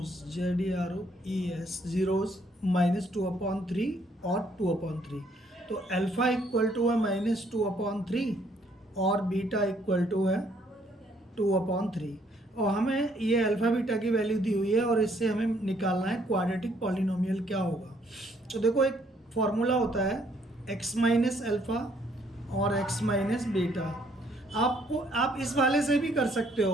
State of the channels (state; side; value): normal; both; correlation 0.67